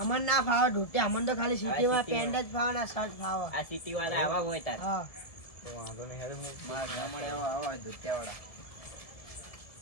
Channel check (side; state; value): right; late; 1.7 ms